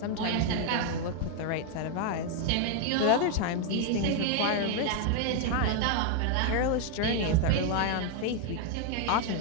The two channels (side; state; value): both; different; correlation 0.00